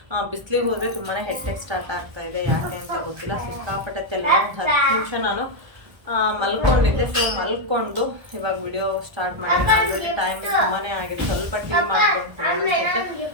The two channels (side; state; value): left; late; 1.3 ms